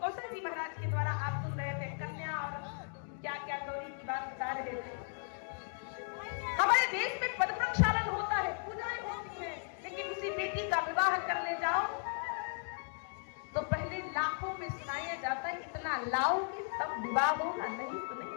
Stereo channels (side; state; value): right; silent; 54 dB below the other